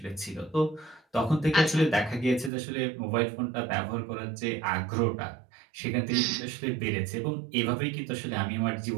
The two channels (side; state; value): left; drops out; at 2.5 s